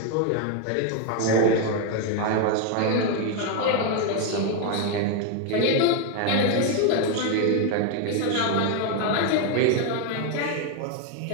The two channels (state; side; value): different; both; correlation 0.01